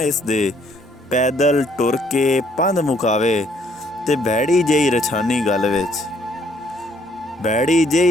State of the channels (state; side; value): normal; both; correlation 0.65